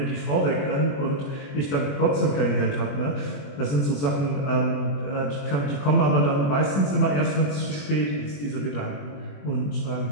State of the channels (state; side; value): late; right; 21 ms